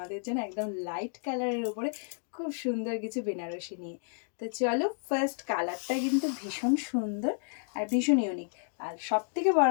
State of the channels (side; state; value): right; silent; 57 dB below the other